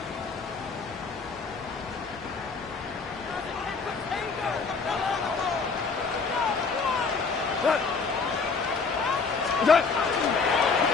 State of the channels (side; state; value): right; quieter; 4.8 dB